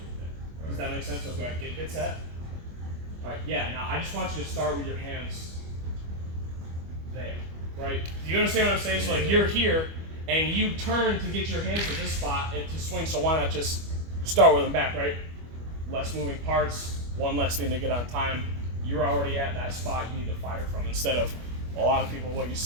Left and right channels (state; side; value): late; left; 25 ms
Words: right there. Does that make sense? So go ahead, get set. All right, yeah, now I just want you to start with your hands there, right? Do you understand what I'm saying? So like you're here and you turn to get your hands to this spot and to swing, so why not just start with them back, right? Less moving parts, one less thing to get on time. You're already at that spot you need to fire from, instead of a lot of people, what you